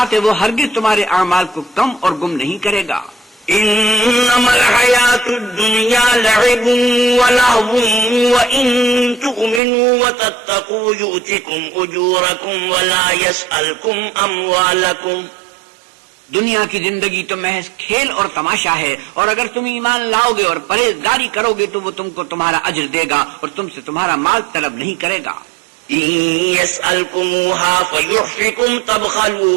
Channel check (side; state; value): left; drops out; at 9.6 s